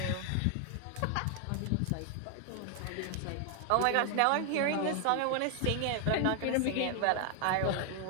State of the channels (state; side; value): different; both; correlation 0.00